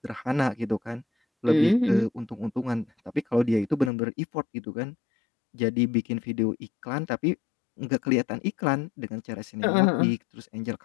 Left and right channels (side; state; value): right; drops out; at 3.9 s